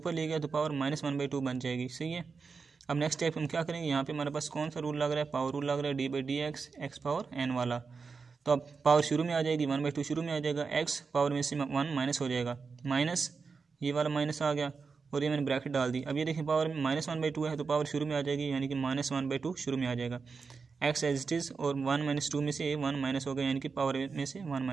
ले गया तो पावर माइनस 1/2 बन जाएगी, सही है। अब नेक्स्ट स्टेप हम क्या करेंगे, यहाँ पे हमारे पास कौन सा रूल लग रहा है, पावर रूल लग रहा है, d by d x x power n वाला। तो अब पावर शुरू में आ जाएगी, 1/2 शुरू में आ जाएगा, एक्स पावर में से 1 माइनस हो जाएगा, माइनस ये वाला माइनस आ गया और ये मैंने ब्रैकेट डाल दी। अब ये देखिए पावर माइनस 1/2 है तो पावर शुरू में आ जाएगी, यानी कि माइनस 1/2 शुरू में आ जाएगा। एक्स एज इट इज़ और 1 - 2 में से 1 माइनस हो गया, यानी कि पावर में से 1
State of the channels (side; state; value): left; quieter; 5.0 dB